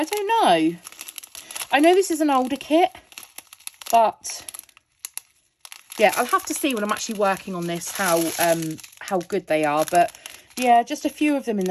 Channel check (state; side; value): identical; both; correlation 1.00